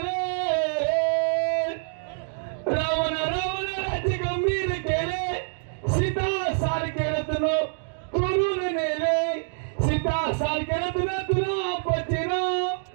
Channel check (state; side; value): silent; left; digital silence